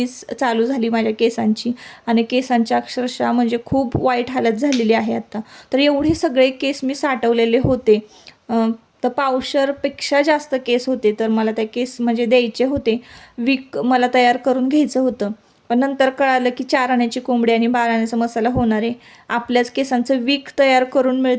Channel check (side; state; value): both; identical; correlation 1.00